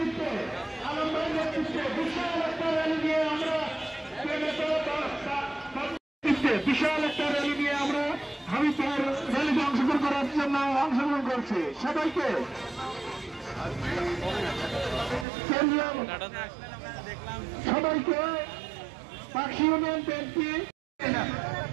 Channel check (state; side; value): drops out; left; at 15.2 s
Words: বিশাল একটা র্যালি নিয়ে আমরা হাবিবপুর র্যালিতে অংশগ্রহণ করার জন্য অংশগ্রহণ করছি। সবাইকে সবাইকে পাখি ইউনিয়ন বিএনপি